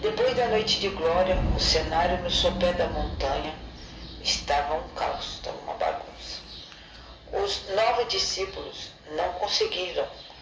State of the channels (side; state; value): both; identical; correlation 1.00